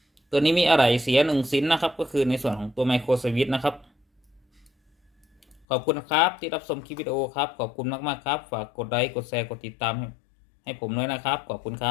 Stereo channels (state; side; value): drops out; right; at 5.7 s